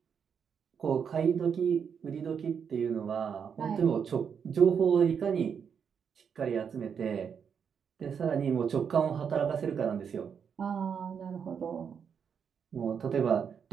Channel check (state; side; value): quieter; left; 7.1 dB